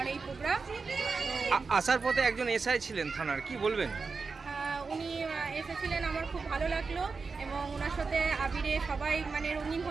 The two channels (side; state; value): left; quieter; 4.6 dB